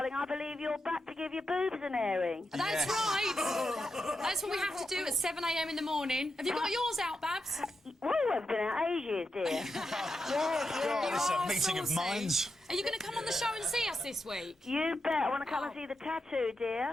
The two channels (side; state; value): both; normal; correlation 0.87